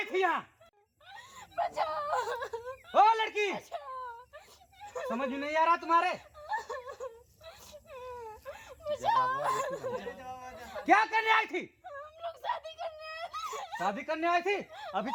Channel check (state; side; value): identical; both; correlation 1.00